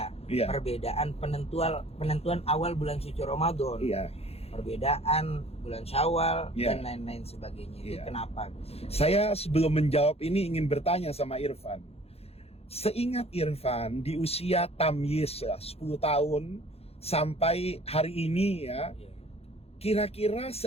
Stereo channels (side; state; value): right; late; 0.29 ms